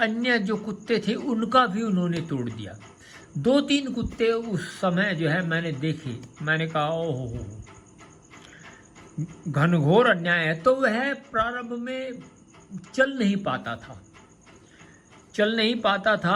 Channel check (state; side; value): identical; both; correlation 1.00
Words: जो कुत्ते थे उनका भी उन्होंने तोड़ दिया। 2-3 कुत्ते उस समय जो है मैंने देखे। मैंने कहा ओहो, घनघोर अन्याय है। तो वह प्रारंभ में चल नहीं पाता